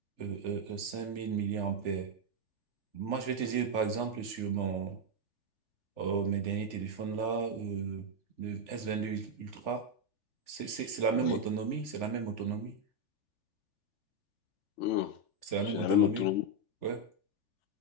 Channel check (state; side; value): late; right; 3.4 ms